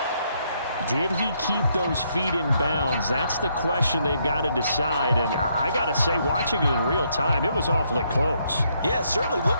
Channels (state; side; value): inverted; both; correlation -0.74